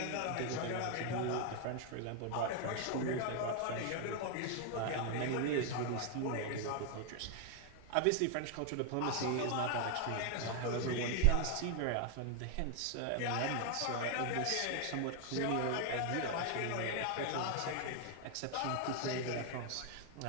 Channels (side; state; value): both; different; correlation 0.00